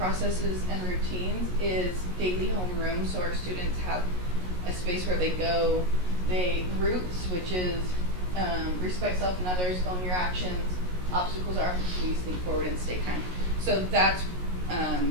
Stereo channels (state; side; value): late; left; 16 ms